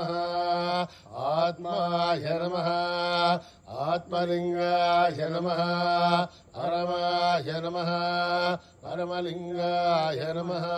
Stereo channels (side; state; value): both; identical; correlation 1.00